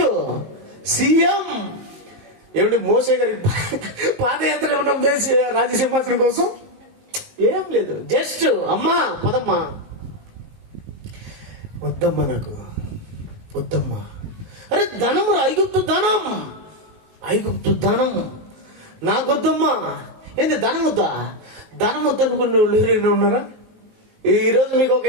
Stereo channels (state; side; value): late; left; 19 ms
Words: సీఎం. ఏమిటి మోసే గారి పాదయాత్ర ఏమన్నా దేశ రాజసింహాసనం కోసం? ఏం లేదు. జస్ట్ అమ్మా పదమ్మా, వద్దమ్మా, నాకు వద్దమ్మా. అరే ధనం రా, ఐగుప్తు ధనం, ఐగుప్తు ధనం నాకొద్దమ్మా. ఏంది ధనం వద్దా? ధనం వద్దనుకున్న వాళ్ళు ఎవరైనా ఉన్నారా? ఈరోజు మీకు ఒక